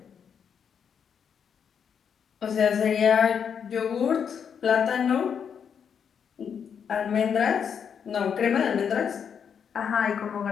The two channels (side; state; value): right; quieter; 7.4 dB